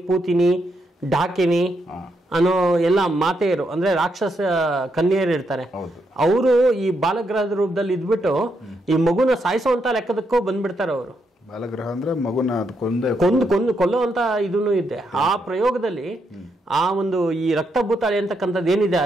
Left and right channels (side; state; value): both; normal; correlation 0.79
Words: ಪೂತಿನಿ, ಡಾಕಿನಿ ಅನ್ನೋ ಎಲ್ಲ ಮಾತೆಯರು ಅಂದ್ರೆ ರಾಕ್ಷಸ ಕನ್ಯೆಯರು ಇರ್ತಾರೆ. ಅವರು ಈ ಬಾಲಗ್ರಹದ ರೂಪದಲ್ಲಿ ಇದ್ಬಿಟ್ಟು ಈ ಮಗುನ ಸಾಯಿಸುವಂತ ಲೆಕ್ಕದಕ್ಕೂ ಬಂದ್ಬಿಡ್ತಾರೆ ಅವರು. ಬಾಲಗ್ರಹ ಅಂದ್ರೆ ಮಗುನ ಕೊಲ್ಲುವಂತ ಇದನ್ನು ಇದೆ. ಆ ಪ್ರಯೋಗದಲ್ಲಿ ಆ ಒಂದು ಈ ರಕ್ತಭೂತಾಳಿ ಅಂತಕ್ಕಂಥದ್ದು ಏನಿದೆ,